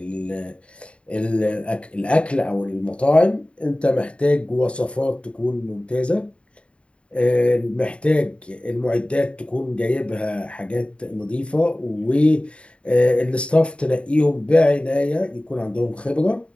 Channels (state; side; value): late; right; 0.059 ms